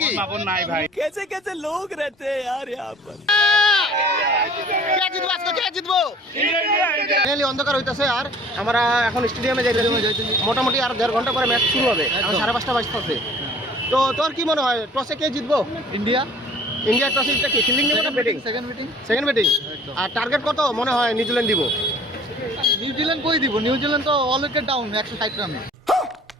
বাবন নাই ভাই कैसे कैसे लोग रहते हैं यार यहाँ पर. কে জিতবো আজকে কে জিতবো ফাইনালি অন্ধকার হইতাছে আর আমরা এখন স্টেডিয়ামে যাইতেছি মোটামুটি আর 1.5 ঘন্টা পরে ম্যাচ শুরু হবে এখন 5:30 বাজতেছে তো তোর কি মনে হয় টসে কে জিতবো ইন্ডিয়া টসে জিততে কি ফিল্ডিং নেবে না ব্যাটিং সেকেন্ড ব্যাটিং আর টার্গেট কত মনে হয় নিউজিল্যান্ড দিব নিউজিল্যান্ড কই দিব নিউজিল্যান্ড তো অল উইকেট ডাউন 160 রানে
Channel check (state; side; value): normal; both; correlation 0.51